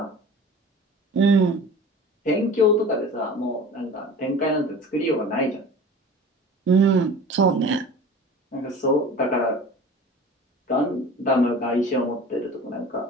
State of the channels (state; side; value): normal; both; correlation 0.40